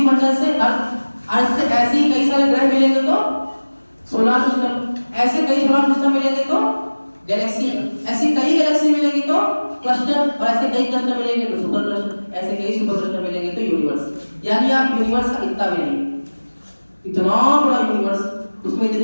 से अर्थ से ऐसे ही कई सारे ग्रह मिलेंगे तो सोलर सिस्टम, ऐसे कई सोलर सिस्टम मिलेंगे तो गैलेक्सी, ऐसी कई गैलेक्सी मिलेंगी तो क्लस्टर, और ऐसे कई क्लस्टर मिलेंगे तो सुपर क्लस्टर, ऐसे कई सुपर क्लस्टर मिलेंगे तो यूनिवर्स। यानी आप यूनिवर्स का इतना भी नहीं, इतना बड़ा यूनिवर्स, उसमें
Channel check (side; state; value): both; inverted; correlation -1.00